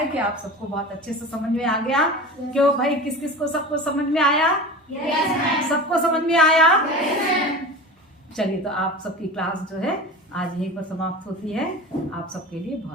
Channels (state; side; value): normal; both; correlation 0.33